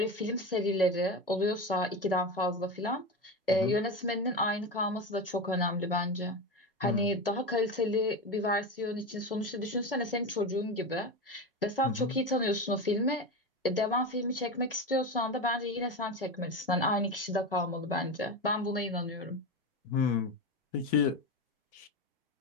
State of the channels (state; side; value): normal; both; correlation 0.20